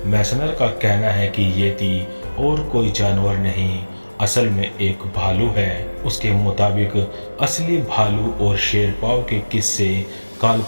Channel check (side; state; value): both; inverted; correlation -1.00